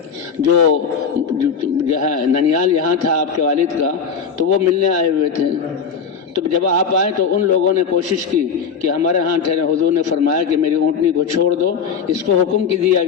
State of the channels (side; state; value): right; quieter; 6.2 dB